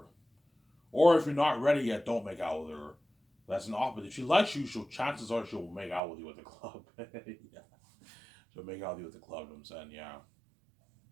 Or if you're not ready yet, don't make out with her. That's an opportunity. If she likes you, chances are she'll make out with you at the club. Yeah. She'll make out with you at the club, you know what I'm saying? Yeah.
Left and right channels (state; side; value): drops out; left; at 6.0 s